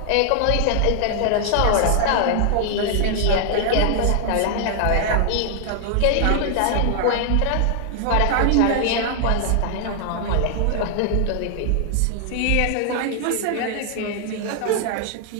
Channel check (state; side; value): different; both; correlation 0.00